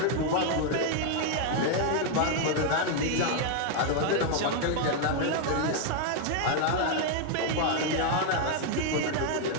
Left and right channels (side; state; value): both; different; correlation 0.00